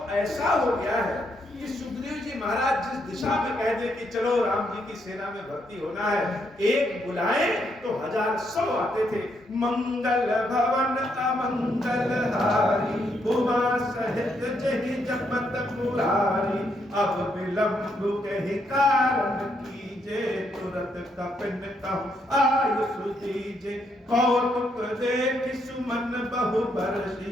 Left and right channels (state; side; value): normal; both; correlation 0.76